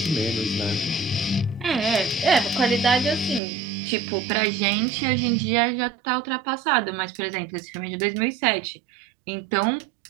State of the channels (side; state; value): left; drops out; at 3.4 s